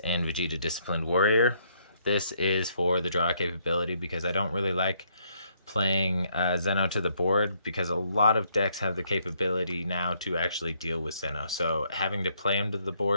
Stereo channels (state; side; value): inverted; both; correlation -0.70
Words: Vegeta Disciplined Warrior. This is for the draw capability because I don't really like playing Zeno to the board, because a lot of decks have the capability now to actually deal with Zeno. So having to play him to the